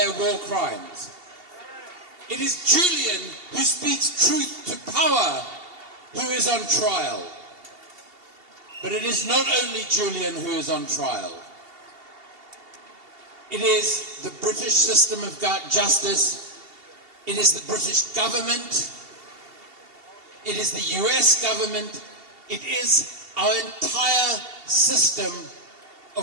war crimes, it is Julian who speaks truth to power who is on trial. But it is not only Julian who is on trial. It is the British system of justice. It is the British government. It is the US government. It is our entire system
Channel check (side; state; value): left; late; 2.7 ms